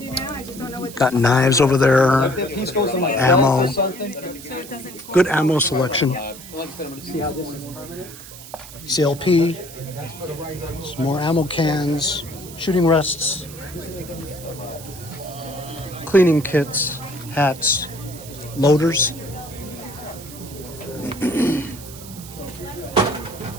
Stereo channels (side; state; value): right; noise; hiss, 15 dB below the sound